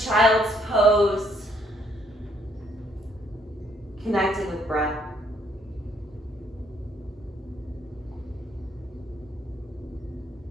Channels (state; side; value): normal; both; correlation 0.69